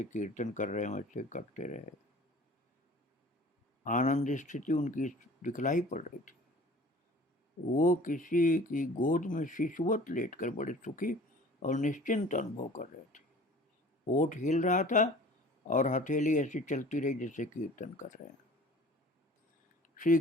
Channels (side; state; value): both; normal; correlation 0.46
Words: कीर्तन कर रहे वैसे करते रहे। आनंद स्थिति उनकी दिखलाई पड़ रही थी। वो किसी की गोद में शिशुवत लेटकर बड़े सुखी और निश्चिंत अनुभव कर रहे थे। होठ हिल रहा था और हथेली ऐसी चलती रही जैसे कीर्तन कर रहे हैं। श्री